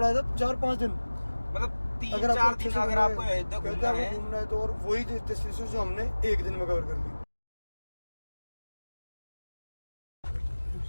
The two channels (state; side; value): inverted; both; correlation -1.00